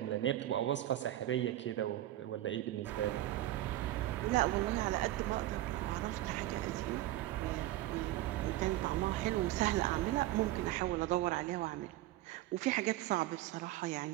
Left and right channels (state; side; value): quieter; left; 15.2 dB